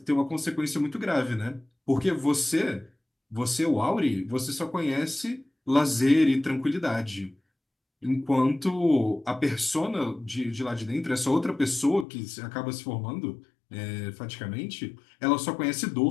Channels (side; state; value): right; drops out; at 12.1 s